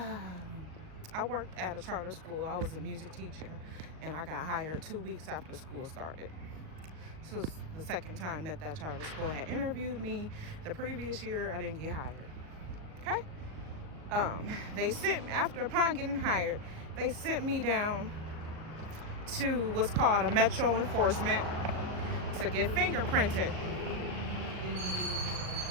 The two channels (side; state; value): left; late; 38 ms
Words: I worked at a charter school. I was a music teacher, and I got hired 2 weeks after school started. This was the second time that charter school had interviewed me. The previous year, I didn't get hired. Okay? Upon getting hired, they sent me down to what's called a metro enforcement to get fingerprinted.